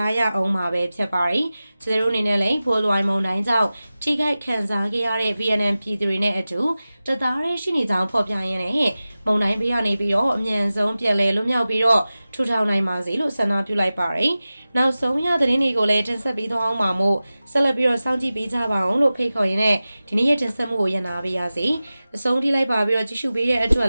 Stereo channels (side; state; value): both; inverted; correlation -0.96